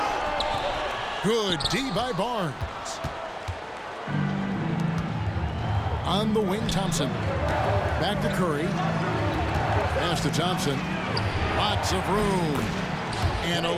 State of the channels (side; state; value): both; identical; correlation 1.00